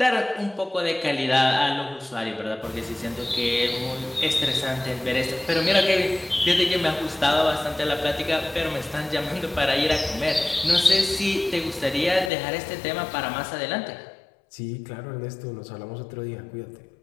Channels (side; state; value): right; drops out; at 12.3 s